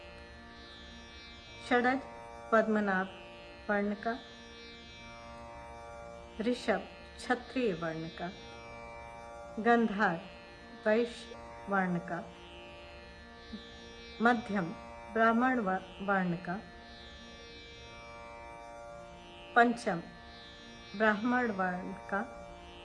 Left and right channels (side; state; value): both; identical; correlation 1.00